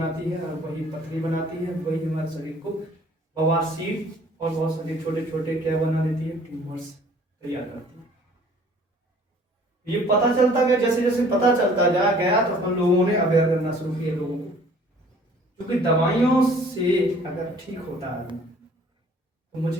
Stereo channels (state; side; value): normal; both; correlation 0.54